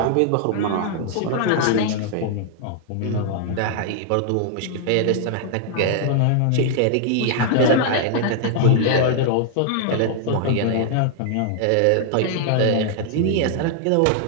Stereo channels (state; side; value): different; both; correlation 0.00